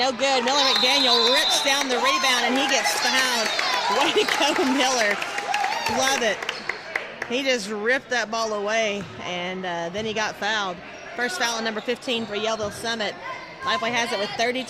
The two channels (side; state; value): both; identical; correlation 1.00